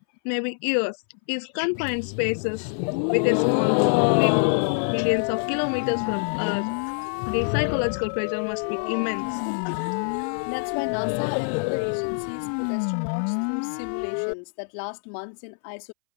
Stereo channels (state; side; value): silent; right; 62 dB below the other